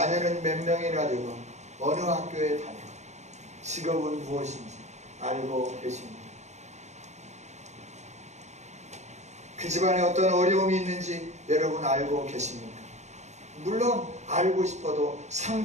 몇 명이나 되고 어느 학교에 다니고 직업은 무엇인지 알고 계십니까? 그 집안에 어떤 어려움이 있는지 여러분 알고 계십니까? 물론 알고 싶어도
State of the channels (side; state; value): left; late; 0.33 ms